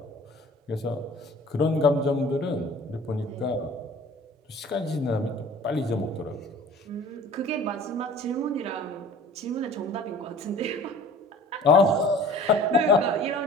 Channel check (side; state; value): both; normal; correlation 0.46